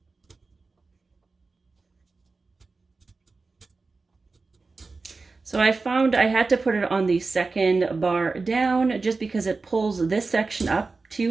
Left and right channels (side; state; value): left; quieter; 3.9 dB